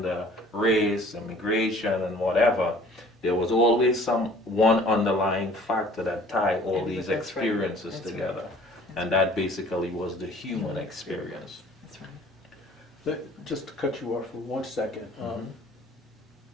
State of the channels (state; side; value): normal; both; correlation 0.52